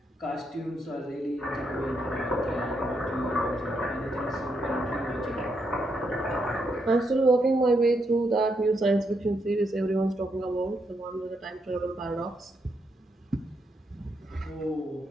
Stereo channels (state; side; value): normal; both; correlation 0.79